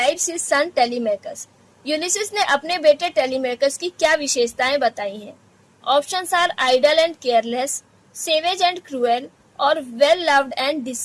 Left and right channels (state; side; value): identical; both; correlation 1.00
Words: his son Telemachus. Ulysses ने अपने बेटे टेलीमैकस की क्या विशेषताएं बताई हैं? Options are idle and careless, savage and cruel और well loved and